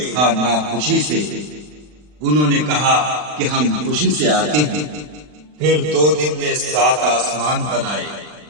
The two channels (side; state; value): left; late; 40 ms